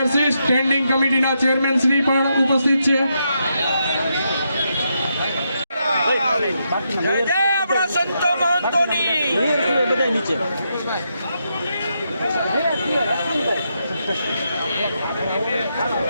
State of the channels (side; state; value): both; inverted; correlation -0.81